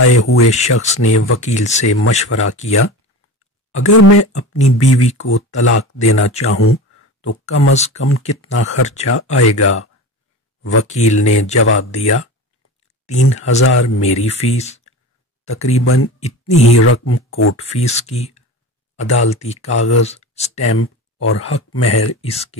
ہوئے شخص نے وکیل سے مشورہ کیا، اگر میں اپنی بیوی کو طلاق دینا چاہوں تو کم از کم کتنا خرچہ آئے گا؟ وکیل نے جواب دیا، 3000 میری فیس، تقریباً اتنی ہی رقم کورٹ فیس کی، عدالتی کاغذ، سٹیمپ اور حق مہر اس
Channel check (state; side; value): normal; both; correlation 0.30